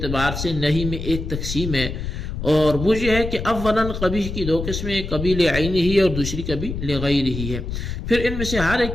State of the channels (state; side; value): noise; left; rumble, 6 dB below the sound